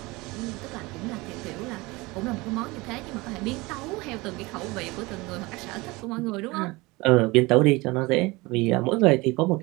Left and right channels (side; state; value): left; quieter; 22.9 dB